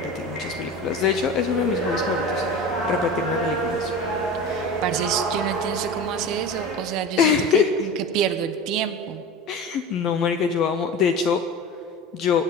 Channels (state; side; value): normal; both; correlation 0.32